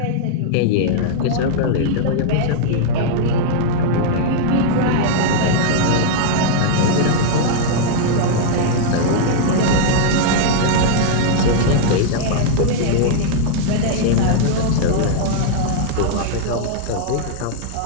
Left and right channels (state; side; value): different; both; correlation -0.01